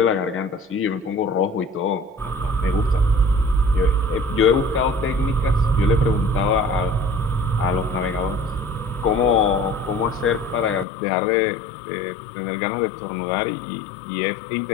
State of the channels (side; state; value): right; drops out; at 10.9 s